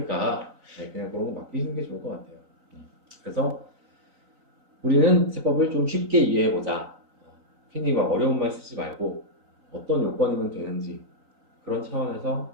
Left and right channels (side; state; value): left; late; 3.9 ms